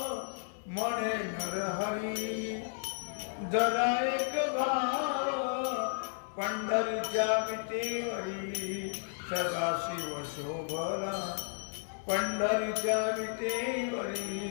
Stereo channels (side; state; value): right; silent; 56 dB below the other